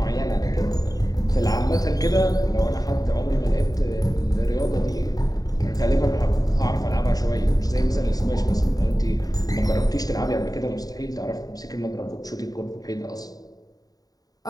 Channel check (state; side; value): late; right; 0.18 ms